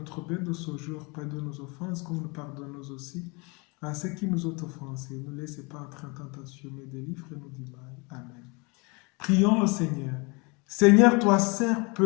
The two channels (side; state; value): right; quieter; 29.1 dB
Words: pain de ce jour, pardonne nos offenses comme nous pardonnons aussi à ceux qui nous ont offensés. Ne laissez pas entrer en tentation, mais délivre-nous du mal. Amen. Prions le Seigneur. Seigneur, toi seul